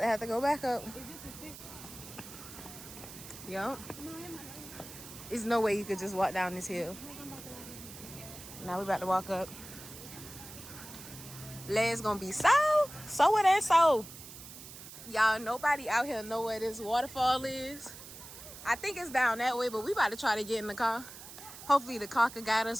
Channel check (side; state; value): right; noise; hiss, 14 dB below the sound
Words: have to go back up. Yup. There's no way you could just walk down this hill. Now we about to walk up. Legs gonna be so it ain't so. Y'all, nobody out here know where this waterfall is. I think it's down that way, but we about to try to get in the car. Hopefully the car can guide